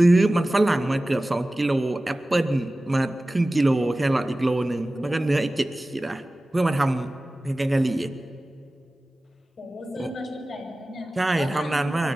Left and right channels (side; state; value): both; normal; correlation 0.97